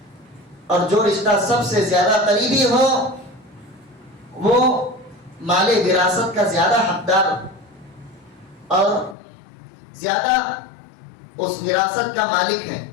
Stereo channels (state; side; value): drops out; right; at 9.2 s